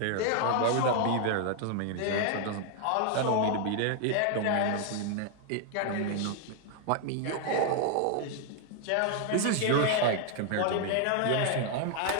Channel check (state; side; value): different; both; correlation 0.00